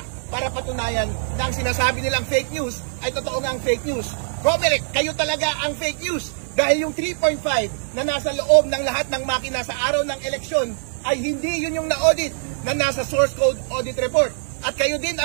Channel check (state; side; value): silent; left; digital silence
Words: para patunayan na ang sinasabi nilang fake news ay totoo ngang fake news. COMELEC, kayo talaga ang fake news dahil yung 3.5 na nasa loob ng lahat ng makina sa araw ng eleksyon ay hindi yun yung na-audit na nasa source code audit report. At kayo din